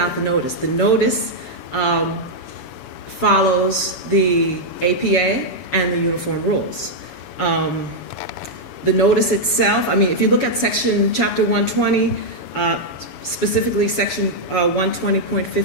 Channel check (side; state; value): right; late; 7.1 ms